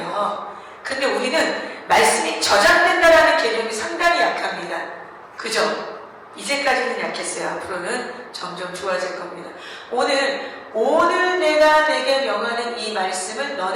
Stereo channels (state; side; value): identical; both; correlation 1.00